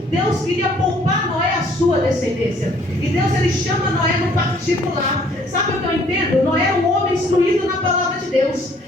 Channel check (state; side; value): normal; both; correlation 0.60